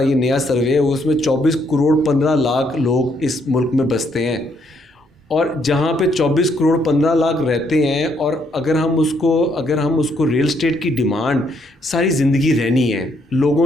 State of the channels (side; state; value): both; normal; correlation 0.72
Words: یہ نیا سروے ہے, اس میں 24 کروڑ 15 لاکھ لوگ اس ملک میں بستے ہیں, اور جہاں پہ 24 کروڑ 15 لاکھ رہتے ہیں, اور اگر ہم اس کو ریئل اسٹیٹ کی ڈیمانڈ ساری زندگی رہنی ہے.